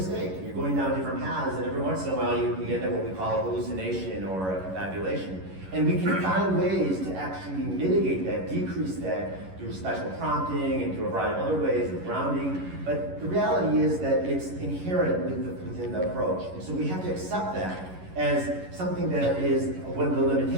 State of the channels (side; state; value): left; late; 11 ms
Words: You're going down different paths, and every once in a while you end up what we call a hallucination or a confabulation. And we can find ways to actually mitigate that, decrease that through special prompting and through a variety of other ways of grounding. But the reality is that it's inherent within the approach. And so we have to accept that as something that is one of the